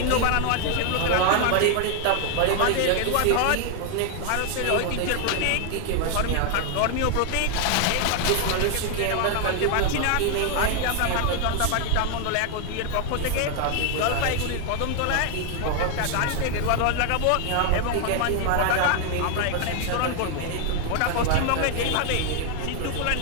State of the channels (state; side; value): different; both; correlation 0.00